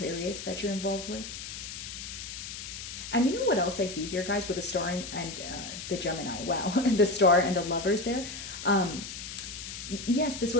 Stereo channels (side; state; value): left; noise; hiss, 9 dB below the sound